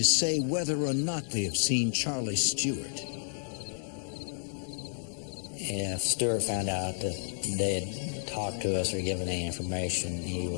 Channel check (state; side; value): silent; right; digital silence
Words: say whether or not they have seen Charlie Stewart. If Stewart found out that they had talked to us or given any information, he